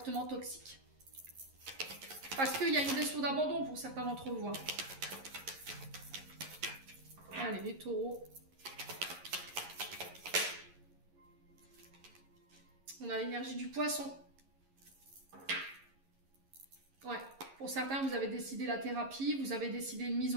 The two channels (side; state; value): left; late; 11 ms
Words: toxiques. Parce qu'il y a une blessure d'abandon pour certains d'entre vous. Hein. Allez, les taureaux. On a l'énergie du poisson. Ouais, pour certains, vous avez décidé la thérapie, vous avez décidé une mise